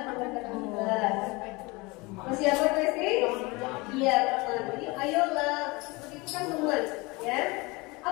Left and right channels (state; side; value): quieter; right; 24.9 dB